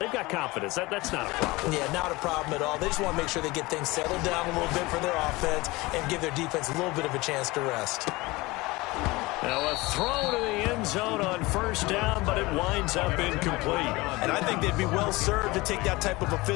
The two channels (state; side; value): quieter; right; 22.0 dB